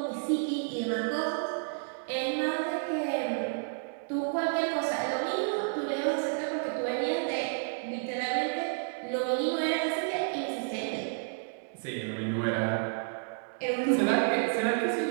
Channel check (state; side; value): silent; left; digital silence